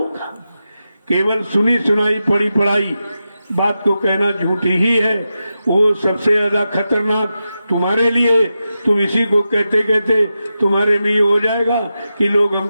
केवल सुनी सुनाई पढ़ी पढ़ाई बात को कहना झूठी ही है। वो सबसे ज्यादा खतरनाक तुम्हारे लिए। तुम इसी को कहते कहते तुम्हारे में ये हो जाएगा कि लोग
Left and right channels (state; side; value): inverted; both; correlation -0.90